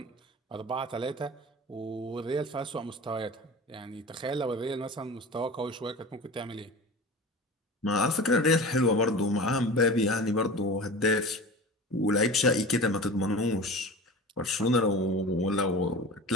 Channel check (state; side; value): normal; both; correlation 0.34